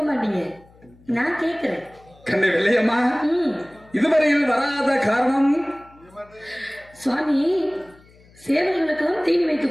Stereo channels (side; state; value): left; noise; hum, 27 dB below the sound